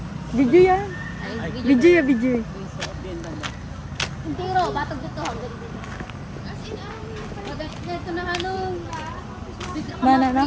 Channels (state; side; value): identical; both; correlation 1.00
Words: Video yan. Video ya, video. Hindi ro, batog dito. As in, ito na ano. Mana